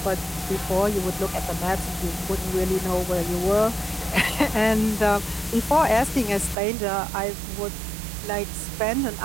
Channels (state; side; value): drops out; left; at 6.6 s